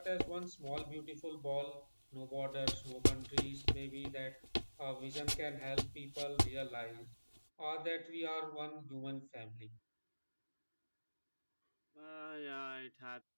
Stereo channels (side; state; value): both; inverted; correlation -1.00